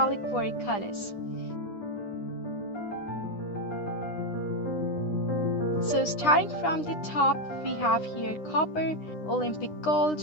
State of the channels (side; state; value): right; late; 9.8 ms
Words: colors. So starting from the top, we have here copper, Olympic gold,